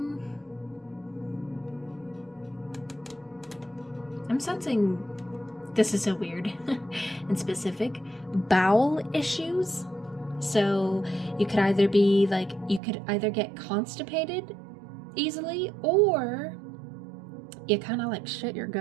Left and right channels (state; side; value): drops out; left; at 12.8 s